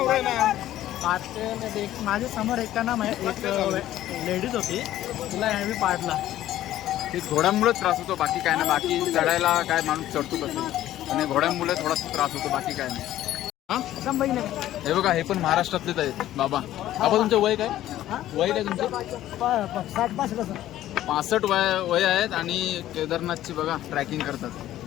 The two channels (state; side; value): quieter; right; 13.4 dB